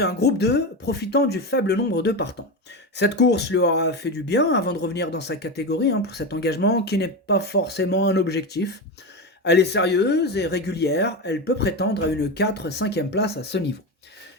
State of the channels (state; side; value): normal; both; correlation 0.18